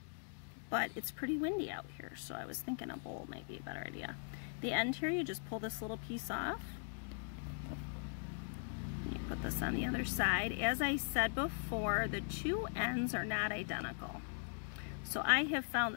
but it's pretty windy out here, so I was thinking a bowl might be a better idea. The end here, you just pull this little piece off. You put this on the other side. As I said before, the two ends are not identical. So I have found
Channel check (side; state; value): right; silent; digital silence